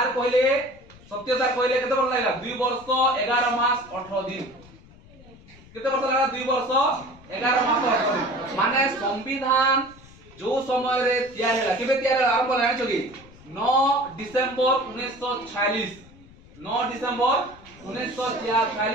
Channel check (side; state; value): left; noise; rumble, 23 dB below the sound